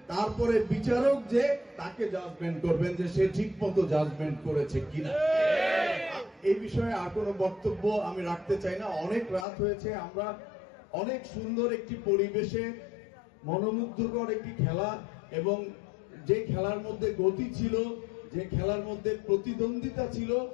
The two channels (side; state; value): right; drops out; at 9.5 s